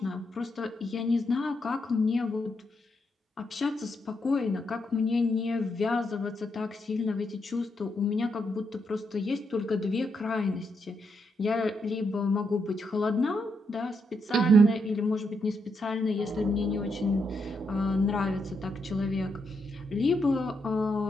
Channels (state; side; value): normal; both; correlation 0.80